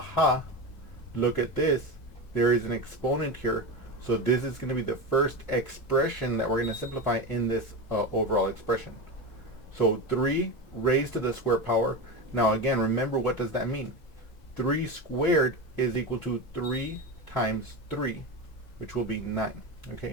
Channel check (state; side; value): late; right; 2.0 ms